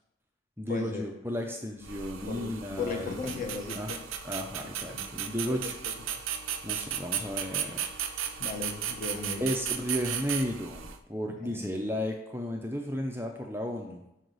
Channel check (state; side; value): normal; both; correlation 0.50